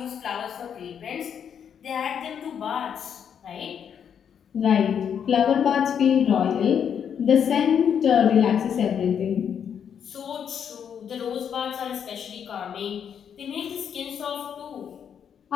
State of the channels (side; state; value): right; quieter; 8.0 dB